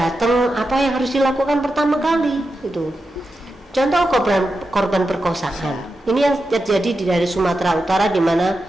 apa yang harus dilakukan pertama kali itu. Contoh korban perkosaan. Ini yang terjadi dari Sumatera Utara, di mana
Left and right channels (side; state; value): both; normal; correlation 0.89